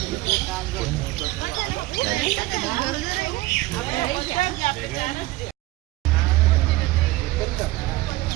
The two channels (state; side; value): quieter; left; 18.7 dB